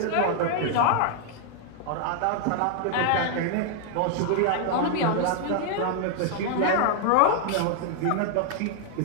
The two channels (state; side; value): different; both; correlation 0.00